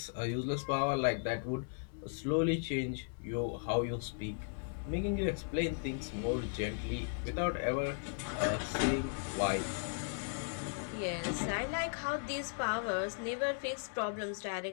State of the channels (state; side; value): silent; right; digital silence